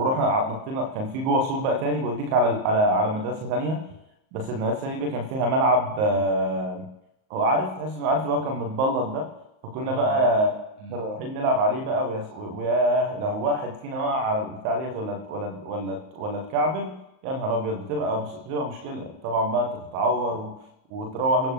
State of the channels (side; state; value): left; late; 38 ms